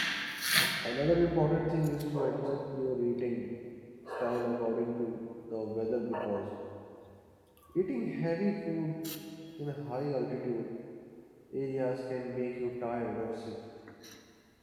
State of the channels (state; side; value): identical; both; correlation 1.00